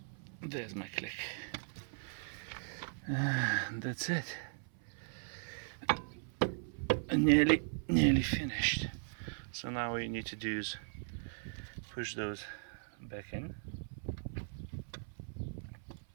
There's my click. That's it. Nearly finished. So now what you need to do is push those back in.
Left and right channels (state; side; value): silent; left; 52 dB below the other